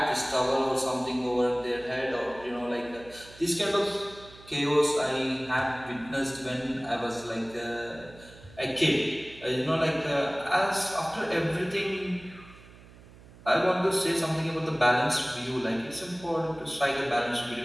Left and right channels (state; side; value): noise; right; hum, 21 dB below the sound